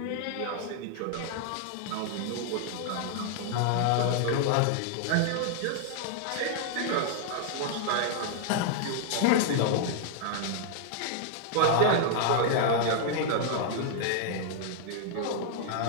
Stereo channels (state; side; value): different; both; correlation 0.00